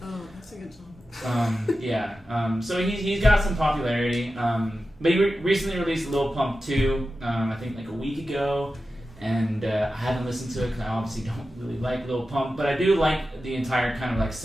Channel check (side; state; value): both; normal; correlation 0.93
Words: Oh, that's a good song. So he's got some popularity. But he recently released Lil Pump 2, I think like a week ago, and I haven't listened to it because I obviously don't really like Lil Pump, but I do like the entire kind of like